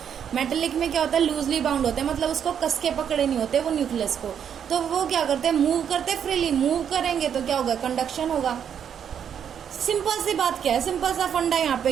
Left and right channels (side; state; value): left; quieter; 8.4 dB